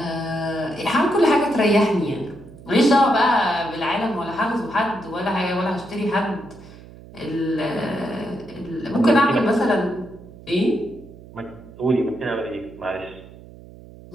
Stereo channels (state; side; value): noise; right; hum, 19 dB below the sound